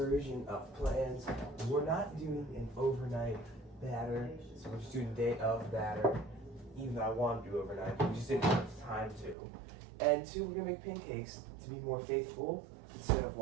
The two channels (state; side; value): drops out; left; at 9.3 s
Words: of plans. We're not doing an overnight batter, so we're just doing a day of batter. Even though I want to do overnight, we just didn't have time to. And 2, we're gonna make pancakes to be more faithful instead of